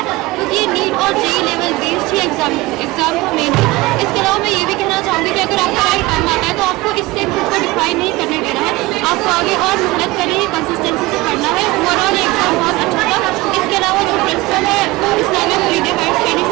क्योंकि ये नीट और JEE लेवल बेस्ड ही एग्ज़ाम का मेन है। इसके अलावा मैं ये भी कहना चाहूँगी कि अगर आपका राइट टाइम आता है तो आपको इससे खुद को डिफाइन नहीं करने देना है, आपको आगे और मेहनत करनी है, कंसिस्टेंसी से पढ़ना है। ओवरऑल एग्ज़ाम बहुत अच्छा था। इसके अलावा जो प्रिंसिपल है Islamic Farida high study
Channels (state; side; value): quieter; left; 20.3 dB